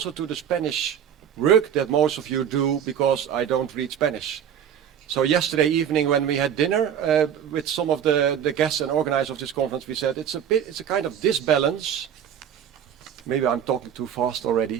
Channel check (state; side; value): quieter; left; 8.9 dB